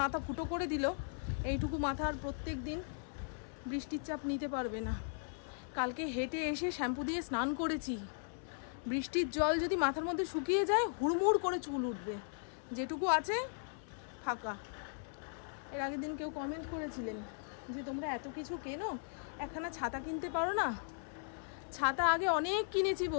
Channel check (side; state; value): right; silent; 53 dB below the other